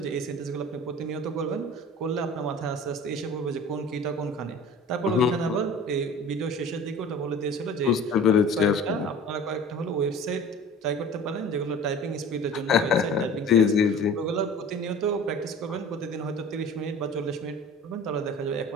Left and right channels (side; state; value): both; normal; correlation 0.41